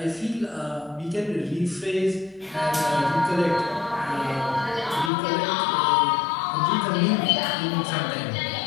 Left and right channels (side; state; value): right; drops out; at 5.1 s